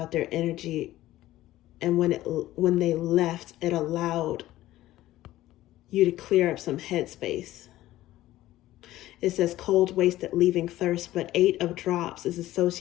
their energy, and when they left, it allowed you to clear up some headspace. It says cold, wasted, leaving thirst, but 8 of drops is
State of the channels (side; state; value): right; quieter; 15.3 dB